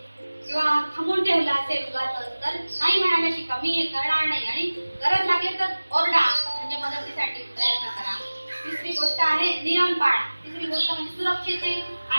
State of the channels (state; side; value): inverted; both; correlation -1.00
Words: किंवा थांबून ठेवलं असेल तर नाही म्हणायला शिका, मी हे करणार नाही. आणि गरज लागली तर ओरडा, म्हणजे मदतीसाठी प्रयत्न करा. तिसरी गोष्ट आहे नियम पाळा. तिसरी गोष्ट म्हणजे सुरक्षेचे